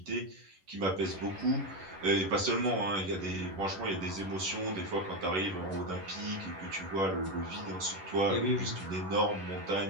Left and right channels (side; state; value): left; late; 10 ms